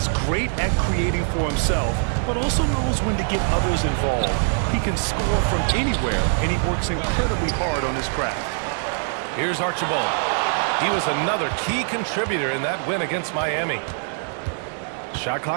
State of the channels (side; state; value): left; silent; 58 dB below the other